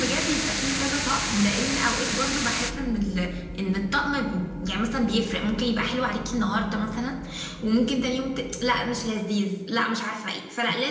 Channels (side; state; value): both; identical; correlation 1.00